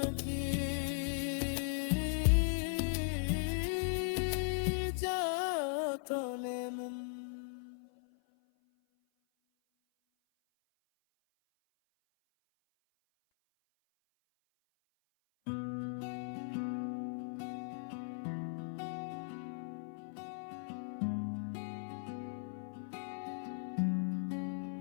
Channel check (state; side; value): silent; right; 52 dB below the other